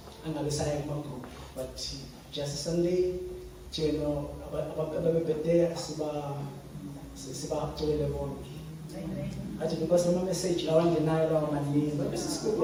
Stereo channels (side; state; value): both; identical; correlation 1.00